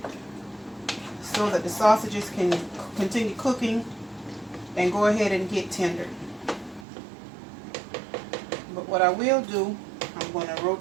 so that the sausages can continue cooking and go ahead and get tender. But what I will do, I'm going to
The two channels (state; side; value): drops out; left; at 6.9 s